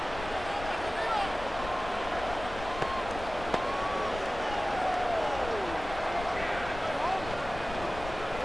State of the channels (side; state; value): left; noise; rumble, 11 dB below the sound